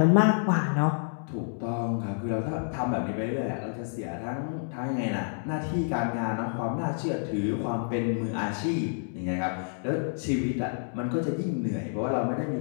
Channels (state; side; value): silent; right; digital silence